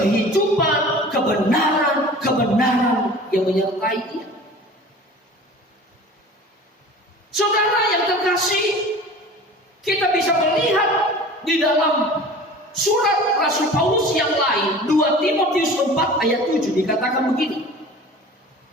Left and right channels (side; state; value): both; normal; correlation 0.41